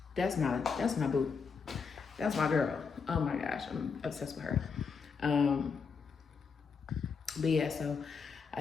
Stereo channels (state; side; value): quieter; right; 5.5 dB